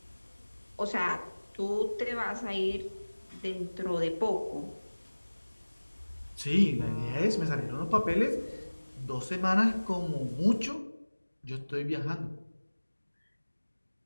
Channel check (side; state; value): both; inverted; correlation -1.00